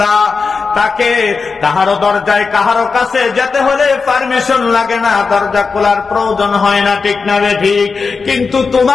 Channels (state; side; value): quieter; right; 4.8 dB